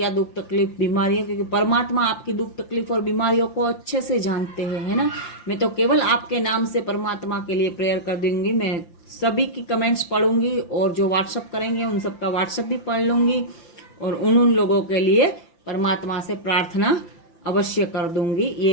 दुख तकलीफ बीमारी है, क्योंकि परमात्मा आपकी दुख तकलीफ और बीमारियों को अच्छे से जानते हैं, है ना। मैं तो केवल आपके नाम से परमात्मा के लिए प्रेयर कर दूंगी। मैं सभी की कमेंट्स पढ़ूंगी और जो व्हाट्सअप करेंगे उन सबका व्हाट्सअप भी पढ़ लूंगी, और उन लोगों के लिए परमात्मा से प्रार्थना अवश्य कर दूंगी।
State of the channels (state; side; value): late; right; 5.8 ms